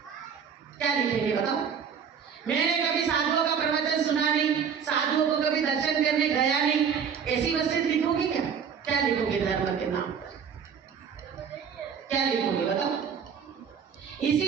क्या लिखेंगे बताओ? मैंने कभी साधुओं का प्रवचन सुना नहीं, साधुओं को कभी दर्शन करने गया नहीं, ऐसी वसीयत लिखोगे क्या? क्या लिखोगे धर्म के नाम पर? क्या लिखोगे बताओ?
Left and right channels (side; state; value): left; quieter; 7.1 dB